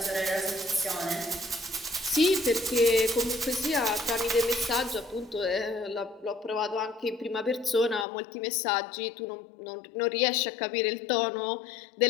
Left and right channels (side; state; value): right; drops out; at 8.1 s